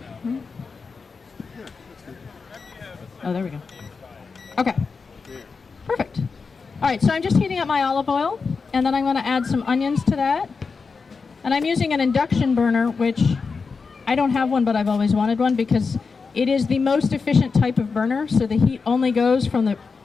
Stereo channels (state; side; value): quieter; right; 4.8 dB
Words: Oh, there we go. Okay. Perfect. All right, so I'm just heating up my olive oil, and then I'm going to add some onions to that. And I'm using an induction burner, which I don't have one, but I've always wanted one because it is the most efficient type of burner, so the heat only goes from the